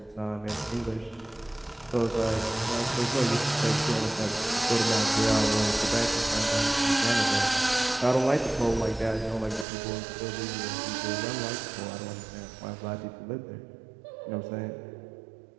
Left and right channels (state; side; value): drops out; left; at 9.7 s